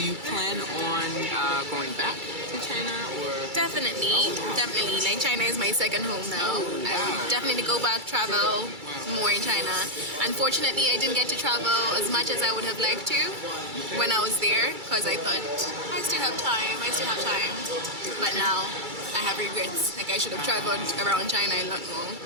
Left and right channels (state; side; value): late; left; 2.3 ms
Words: you plan on going back to China or? Definitely. Like China is my second home now. I would definitely go back, travel more in China. Unfortunately, I didn't get to travel as much as I would have liked to when I was there because I thought I still have time. But now I have regrets. Like I should have traveled around China a lot more.